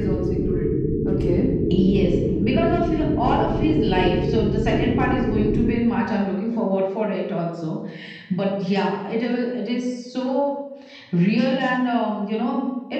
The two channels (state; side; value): identical; both; correlation 1.00